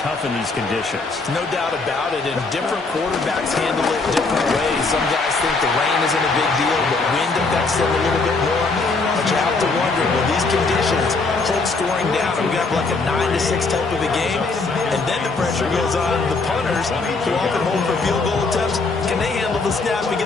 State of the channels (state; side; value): quieter; right; 3.8 dB